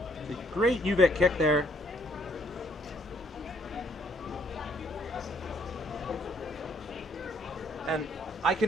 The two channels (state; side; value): normal; both; correlation 0.66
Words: A great UVic kick there. And I